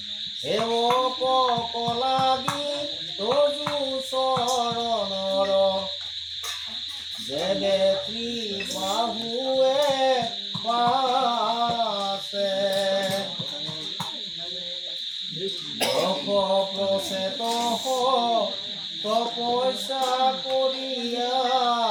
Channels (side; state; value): both; identical; correlation 1.00